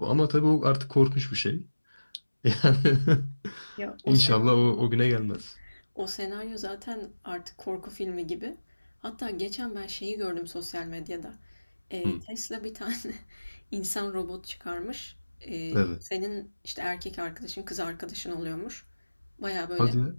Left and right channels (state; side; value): inverted; both; correlation -1.00